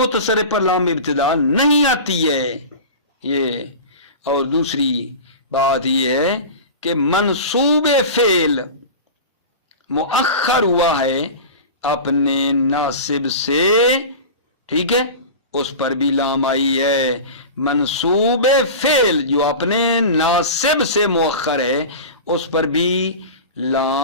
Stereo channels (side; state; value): both; inverted; correlation -0.31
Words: پر لام ابتدا نہیں آتی ہے. یہ اور دوسری بات یہ ہے کہ منصوب فعل مؤخر ہوا ہے اپنے ناصب سے, ٹھیک ہے, اس پر بھی لام آئی ہے. منصوب فعل جو اپنے ناصب سے مؤخر ہے اس پر بھی